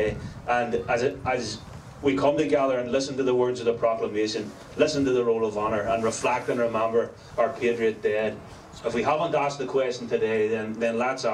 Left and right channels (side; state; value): both; identical; correlation 1.00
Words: And as we come together and listen to the words of the proclamation, listen to the roll of honour, and reflect and remember our patriot dead. If we haven't asked the question today, then let's